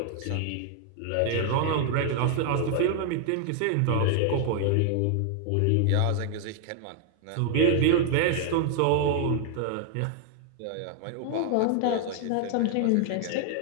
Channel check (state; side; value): different; both; correlation 0.00